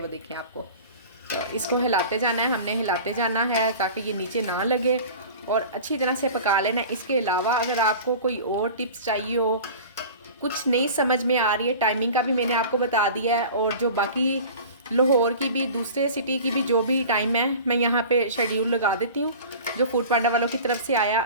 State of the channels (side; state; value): both; inverted; correlation -0.39